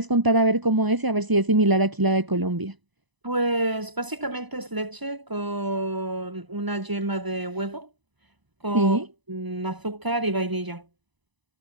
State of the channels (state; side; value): late; left; 1.0 ms